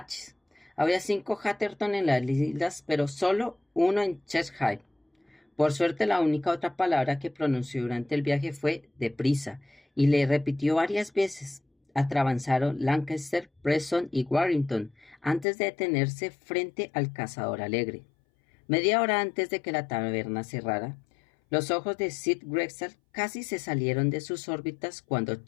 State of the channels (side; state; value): right; drops out; at 15.5 s